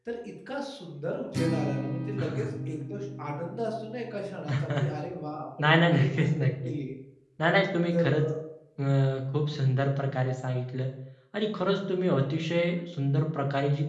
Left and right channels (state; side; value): identical; both; correlation 1.00